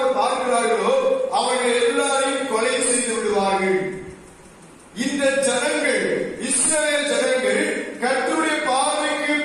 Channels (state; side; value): identical; both; correlation 1.00